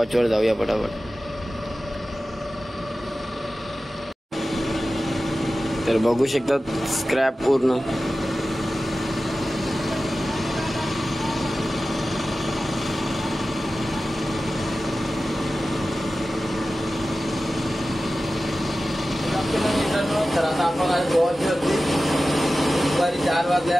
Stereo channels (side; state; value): both; normal; correlation 0.95